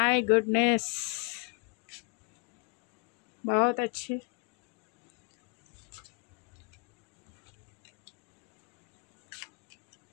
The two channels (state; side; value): quieter; right; 37.1 dB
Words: गुडनेस, बहुत अच्छे।